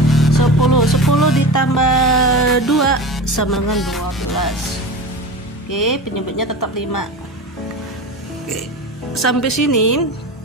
10. 10 ditambah 2 sama dengan 12. Oke, penyebutnya tetap 5. Oke, sampai sini.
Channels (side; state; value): both; normal; correlation 0.29